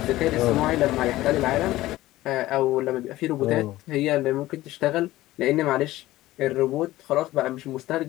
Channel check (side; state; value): right; quieter; 16.6 dB